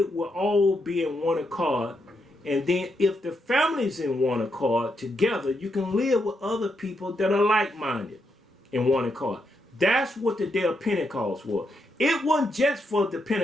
will all be in one accord. And then if the family's in one accord together, you can live with other people that are like-minded in one accord. That's what the day of Pentecost was. It wasn't just for the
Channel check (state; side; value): normal; both; correlation 0.81